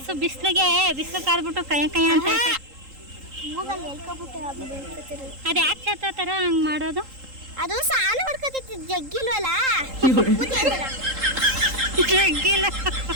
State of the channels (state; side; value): late; left; 3.8 ms